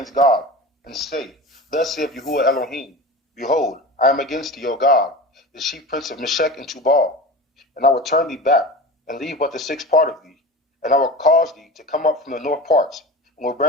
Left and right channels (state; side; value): normal; both; correlation 0.32